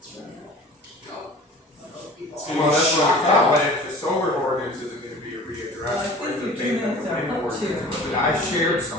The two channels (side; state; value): both; normal; correlation 0.43